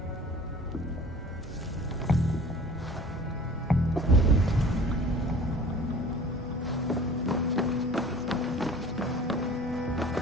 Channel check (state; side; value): normal; both; correlation 0.45